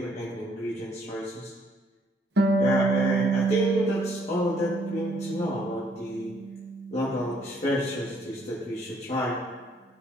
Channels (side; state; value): both; normal; correlation 0.67